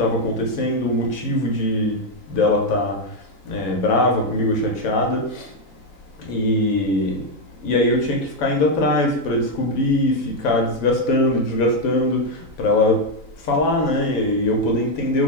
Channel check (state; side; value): late; right; 3.9 ms